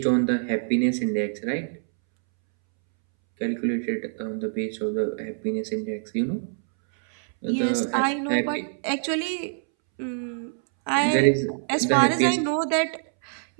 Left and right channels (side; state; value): left; silent; 62 dB below the other